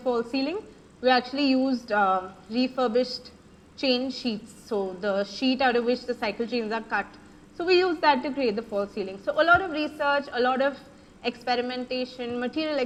ceiling, we actually used refurbished chain sheets, so the sheet out of which the cycle chains are cut. So we used that to create the false ceiling. So a lot of research, a lot of experimentation, material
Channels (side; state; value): both; identical; correlation 1.00